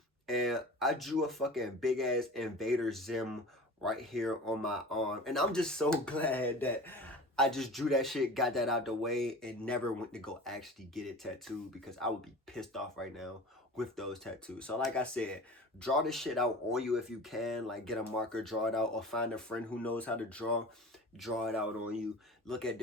and I drew a fucking big ass Invader Zim right here on my arm. And I'm just so glad that I just drew that shit, got that out the way, and never went to go actually get it tattooed because I would be pissed off right now with those tattoos. So like I said, draw this shit out on you if you can. Like get a marker, draw it out, or find a friend who knows how to draw it out on you. Look at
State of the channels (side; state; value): both; normal; correlation 0.37